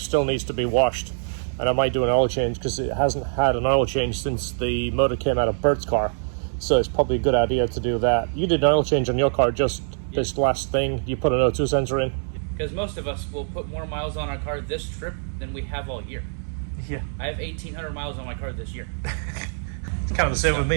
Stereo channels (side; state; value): left; silent; digital silence